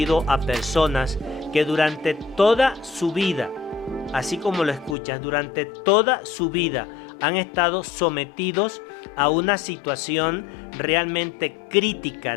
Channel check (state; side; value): drops out; right; at 5.0 s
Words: a personas que durante toda su vida, así como lo escuchas, durante toda su vida han estado sometidos a una situación realmente crítica